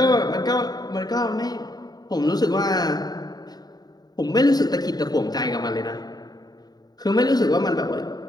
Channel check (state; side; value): late; right; 0.19 ms